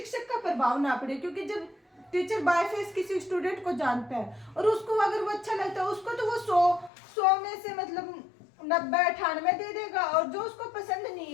का प्रभाव ना पड़े। क्योंकि जब टीचर बाय फेस किसी स्टूडेंट को जानता है और उसको अगर वो अच्छा लगता है, उसको तो वो 100 में से मतलब 90-98 दे देगा, और जो उसको पसंद नहीं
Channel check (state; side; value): drops out; right; at 6.9 s